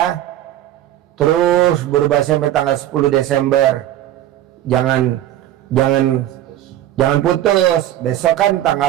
Terus berobat sampai tanggal 10 Desember. Jangan putus. Besok kan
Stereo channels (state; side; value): quieter; left; 12.9 dB